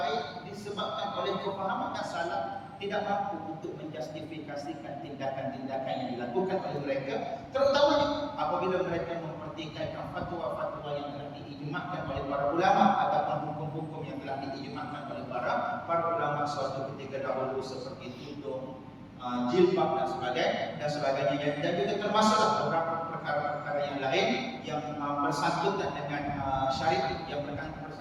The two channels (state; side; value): identical; both; correlation 1.00